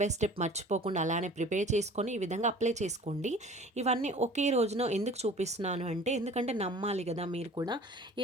బై స్టెప్ మర్చిపోకుండా అలానే ప్రిపేర్ చేసుకొని ఈ విధంగా అప్లై చేసుకోండి. ఇవన్నీ ఒకే రోజున ఎందుకు చూపిస్తున్నాను అంటే, ఎందుకంటే నమ్మాలి కదా మీరు కూడా.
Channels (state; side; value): normal; both; correlation 0.46